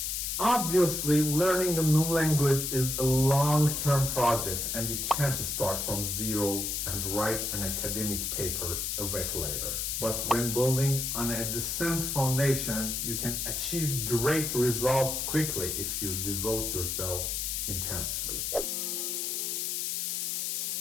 Obviously, learning a new language is a long-term project and you can't start from zero and write an academic paper a week later. But when building on a decent foundation, you can achieve great results quickly if you devote yourself intensely.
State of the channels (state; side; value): noise; left; hiss, 1 dB below the sound